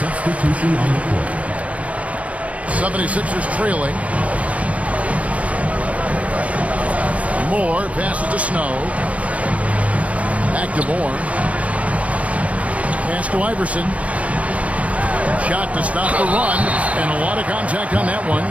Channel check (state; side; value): late; left; 0.066 ms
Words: on the court. 76ers trailing. Moore passes to Snow. Back to Moore. Pass to Iverson. Shot to stop the run. And a lot of contact on that